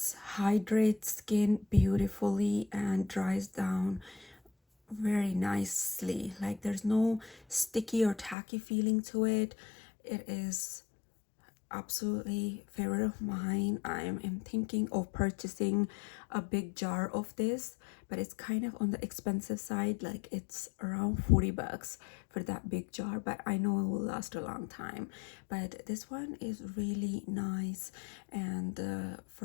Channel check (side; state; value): right; drops out; at 8.3 s